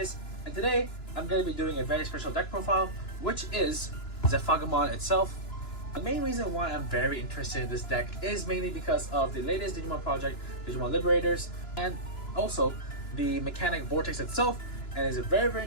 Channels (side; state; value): right; late; 2.9 ms